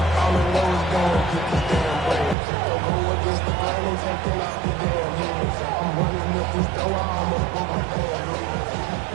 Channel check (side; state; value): left; drops out; at 2.4 s